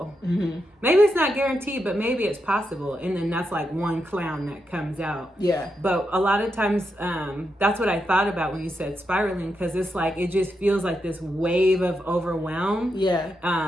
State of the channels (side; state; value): both; normal; correlation 0.85